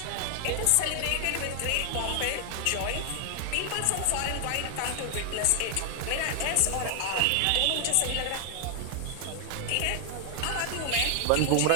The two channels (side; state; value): both; different; correlation 0.00